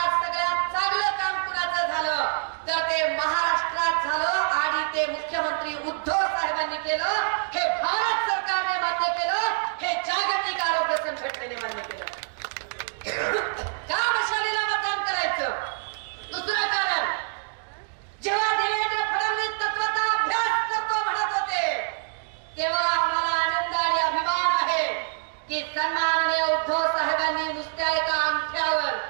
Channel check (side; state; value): left; silent; digital silence